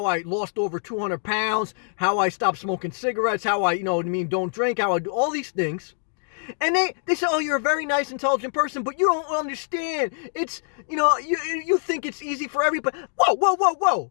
I lost over 200 pounds, how I stopped smoking cigarettes, how I, don't drink, how I do all these things. And they say, oh, you're a very nice, intelligent person, but you don't understand. It's, you think it's easy for everybody. Whoa.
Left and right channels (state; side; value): silent; right; digital silence